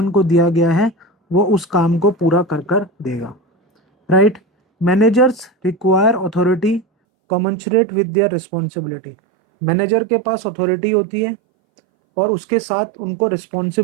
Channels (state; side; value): drops out; left; at 6.9 s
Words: को दिया गया है वो उस काम को पूरा कर कर देगा। Right, managers require authority commensurate with their responsibility. Manager के पास अथॉरिटी होती है और उसके साथ उनको